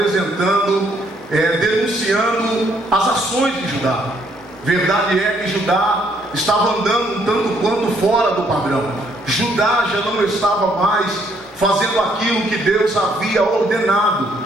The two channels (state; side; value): normal; both; correlation 0.68